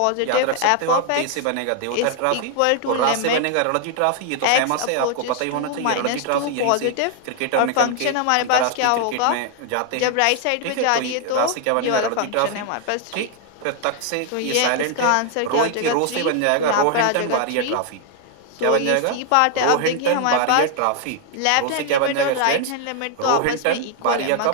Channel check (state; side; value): different; both; correlation 0.00